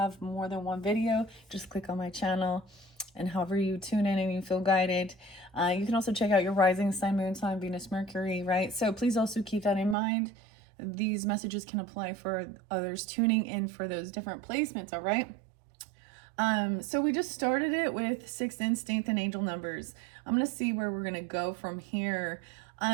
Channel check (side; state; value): left; drops out; at 10.0 s